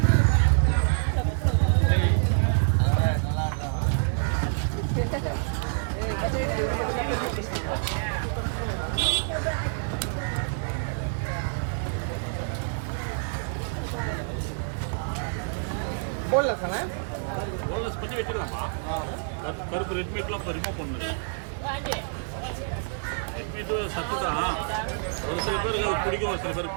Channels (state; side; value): silent; left; 60 dB below the other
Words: Boneless பண்ணி வச்சிடலாமா? கருப்பு ரெட் மீட்லாம் இப்போ ரிமூவ் பண்ணுது. ரெட் மீட்டு சத்து தான். ஒரு சில பேருக்கு பிடிக்கும், ஒரு சில பேருக்கு